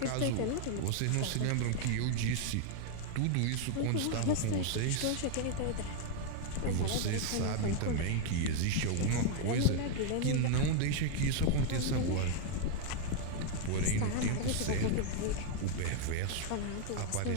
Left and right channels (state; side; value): different; both; correlation 0.00